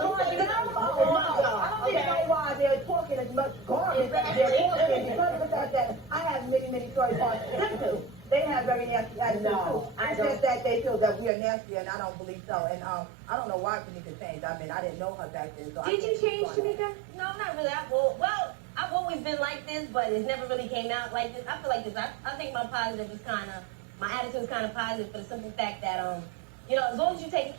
I don't even know why they're talking as much garbage as they're talking because of the fact that I have many stories on them too. They have very nasty attitudes too. It's just that they feel that we are nasty, and I don't believe so. And I don't know why Tamika changed. I mean, I didn't know her back then. So Did you change, Tamika? No, not really. I've always been like this, but it's never really came out like this. I feel like this. I think my attitude is kind of positive for the simple fact that, you know, as long as you take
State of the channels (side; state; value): left; drops out; at 11.3 s